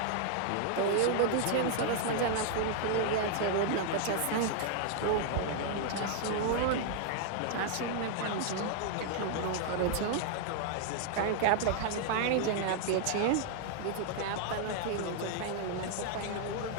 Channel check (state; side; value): different; both; correlation -0.01